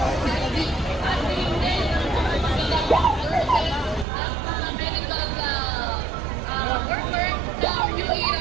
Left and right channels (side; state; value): left; drops out; at 4.0 s